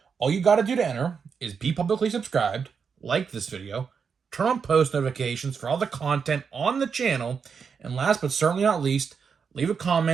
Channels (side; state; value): left; quieter; 6.1 dB